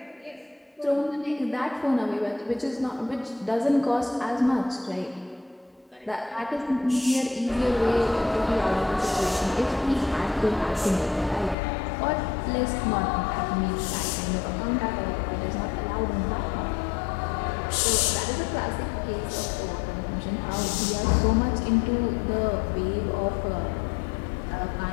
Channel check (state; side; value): drops out; right; at 11.6 s